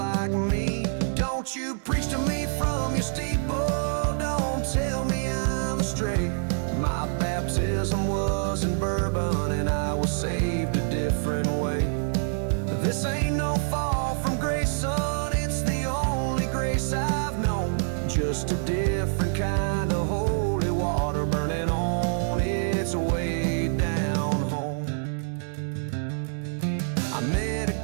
me. Don't you preach to me from your steeple, don't tell me I'm astray. My baptism was in bourbon and I was saved a different way. This ain't no fall from grace, son, it's the only grace I've known. Just a different kind of holy water burning on its way down home. I met a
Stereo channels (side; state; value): left; silent; digital silence